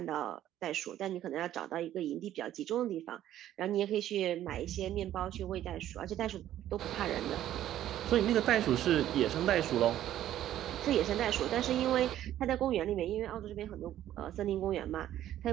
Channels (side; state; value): left; quieter; 12.3 dB